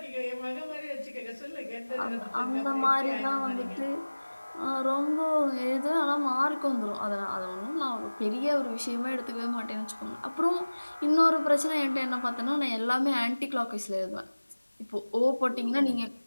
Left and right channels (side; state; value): both; inverted; correlation -1.00